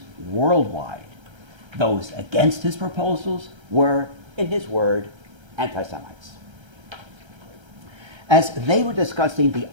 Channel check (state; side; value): late; left; 1.3 ms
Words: worldwide. Those against his proposals were, in his word, anti-Semites. As they were discussing the